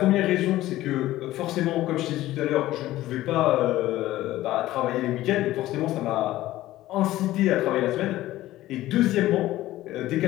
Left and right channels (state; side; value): quieter; right; 15.6 dB